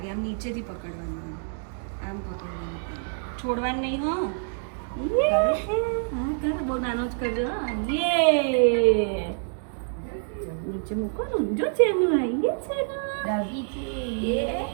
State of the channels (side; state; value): left; silent; digital silence